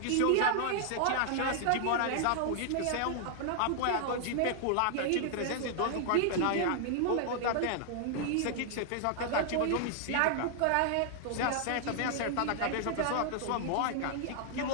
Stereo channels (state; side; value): different; both; correlation -0.01